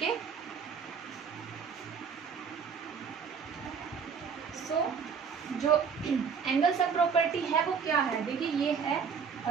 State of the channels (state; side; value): quieter; left; 6.3 dB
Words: so जो एंगल सम प्रॉपर्टी है वो क्या है? देखिए, ये है